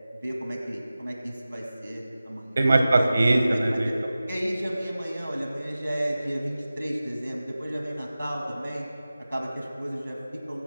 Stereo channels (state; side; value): inverted; both; correlation -0.96